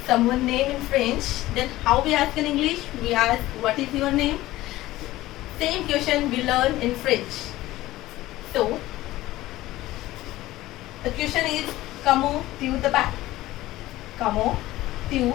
someone's name in French, then how we ask in English? We ask what is your name? Same question we learn in French. So the question is comment tu t'appelles? Comment tu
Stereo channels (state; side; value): quieter; right; 16.7 dB